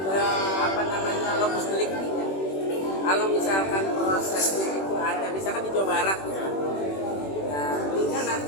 apa namanya lokus deliktinya. Kalau misalkan prosesnya itu ada, misalkan di Jawa Barat, nah tinggal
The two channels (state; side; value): late; right; 21 ms